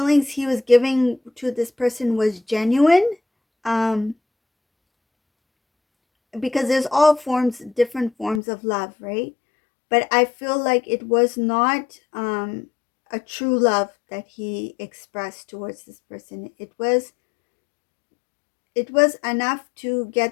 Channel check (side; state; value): right; drops out; at 8.4 s